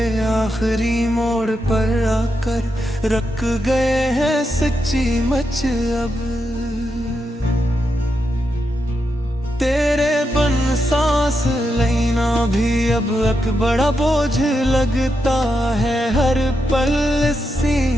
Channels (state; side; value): normal; both; correlation 0.85